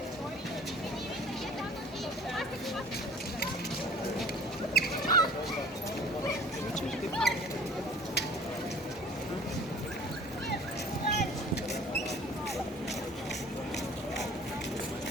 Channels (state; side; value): normal; both; correlation 0.49